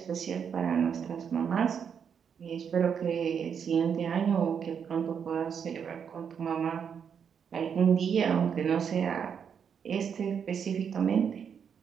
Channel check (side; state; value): left; quieter; 7.3 dB